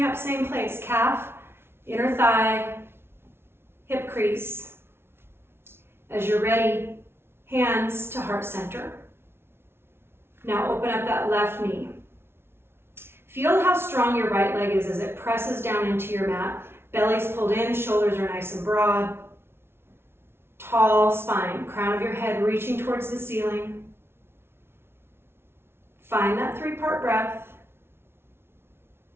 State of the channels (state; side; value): late; left; 0.12 ms